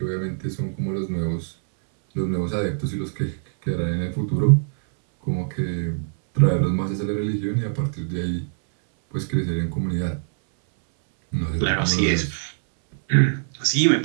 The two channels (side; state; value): left; silent; 63 dB below the other